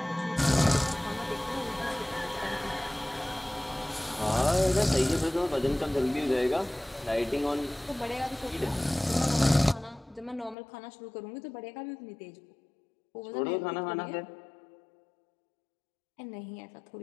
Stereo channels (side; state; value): right; drops out; at 10.6 s